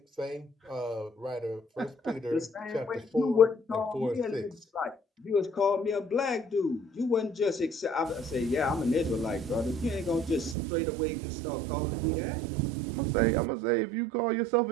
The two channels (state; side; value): drops out; left; at 10.6 s